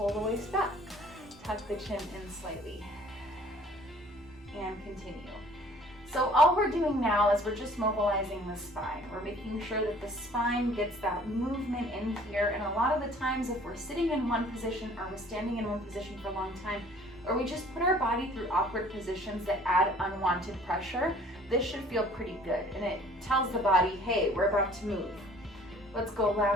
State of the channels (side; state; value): both; normal; correlation 0.53